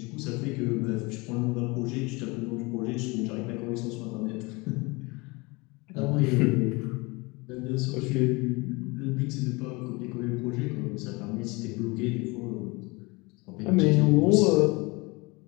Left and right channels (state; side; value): quieter; right; 25.8 dB